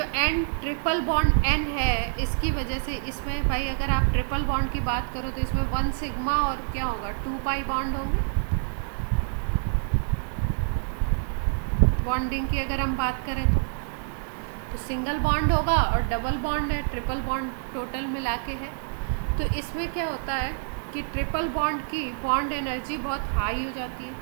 N ट्रिपल बॉन्ड N है, इसकी वजह से इसमें भाई अगर आप ट्रिपल बॉन्ड की बात करो तो इसमें 1 सिग्मा और क्या होगा, 2 पाई बॉन्ड होंगे। बॉन्डिंग की अगर हम बात करें तो सिंगल बॉन्ड होगा और डबल बॉन्ड है, ट्रिपल बॉन्ड टोटल मिला के है। तो इसमें क्या होता है कि ट्रिपल बॉन्ड की बॉन्ड एनर्जी बहुत हाई हो जाती है,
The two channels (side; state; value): left; silent; digital silence